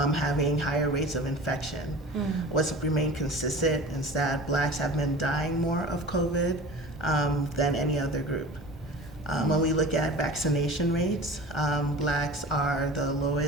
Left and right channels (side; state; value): both; normal; correlation 0.38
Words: having higher rates of infection. What's remained consistent is that Blacks have been dying more of COVID than any other group. When we look at vaccination rates, Blacks have the